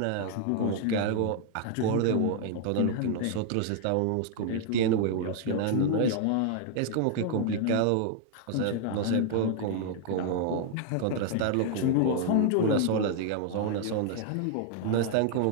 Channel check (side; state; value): both; different; correlation 0.00